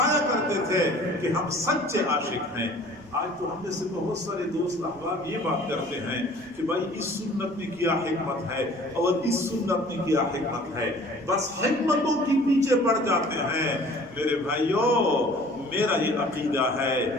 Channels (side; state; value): right; noise; rumble, 28 dB below the sound